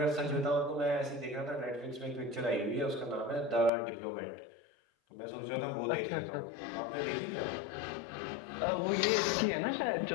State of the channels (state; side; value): drops out; right; at 3.7 s